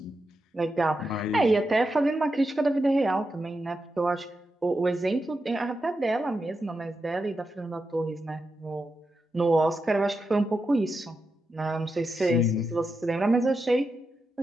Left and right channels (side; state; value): both; normal; correlation 0.87